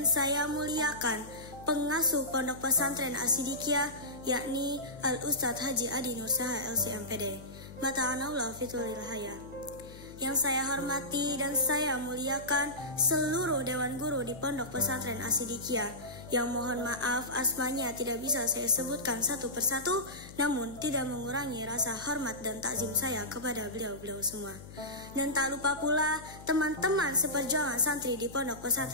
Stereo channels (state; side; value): noise; left; hum, 16 dB below the sound